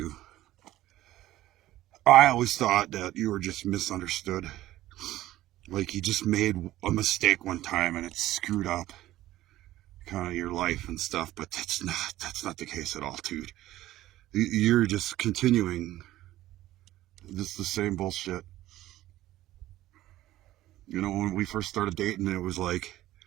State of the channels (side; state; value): left; quieter; 15.1 dB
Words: I always thought that you were just misunderstood. Like you just made a mistake one time and it screwed up kind of your life and stuff, but that's not the case at all, dude. You're just continuing just the same bullshit. You know, when we first started dating, it was like,